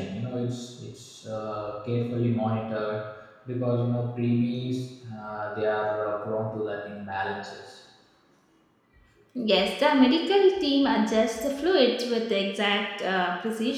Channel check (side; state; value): both; identical; correlation 1.00